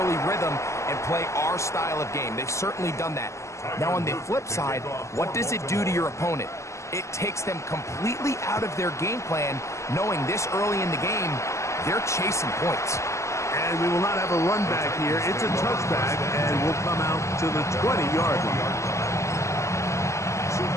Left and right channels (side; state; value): right; late; 0.14 ms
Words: rhythm and play our style of game. They've certainly done that. Now, on the flip side, what does it do to your opponent? It takes them completely out of their game plan, knowing this early in the game, they're chasing points. And we will not have a run back here. It's a touchback, and we'll come out to the 20-yard line.